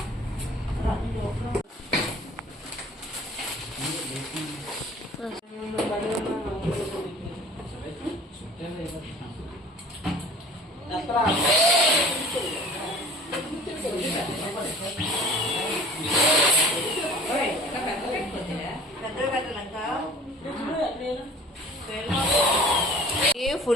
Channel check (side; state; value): both; normal; correlation 0.46